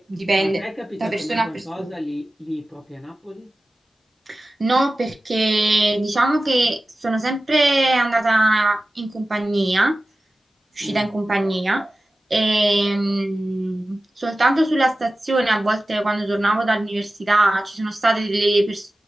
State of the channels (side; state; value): both; normal; correlation 0.95